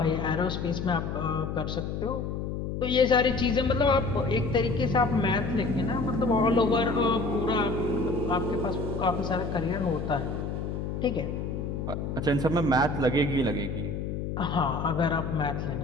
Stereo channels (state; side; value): noise; left; hum, 4 dB below the sound